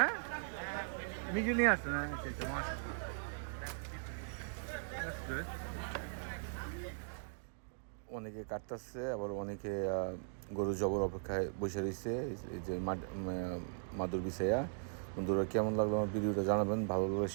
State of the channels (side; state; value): left; silent; digital silence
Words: মিজু নিয়ে আসছেন? আচ্ছা আচ্ছা, মাশাআল্লাহ। That's good. অনেকে কাটতেছে, আবার অনেকে গরু জবর অপেক্ষায় বসে রয়েছে। এই যে মাদুর বিছাইয়া। বন্ধুরা, কেমন লাগলো আমার ভিডিওটা জানাবেন, ভালো লাগলে